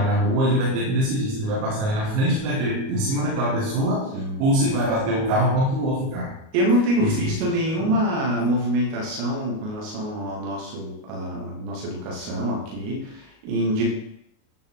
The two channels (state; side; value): late; left; 38 ms